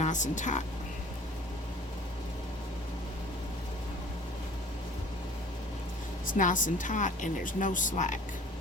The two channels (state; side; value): normal; both; correlation 0.48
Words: and tight. It's nice and tight, and there's no slack